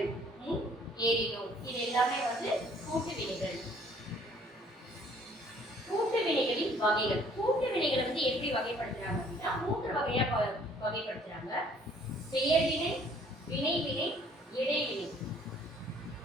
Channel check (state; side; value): normal; both; correlation 0.59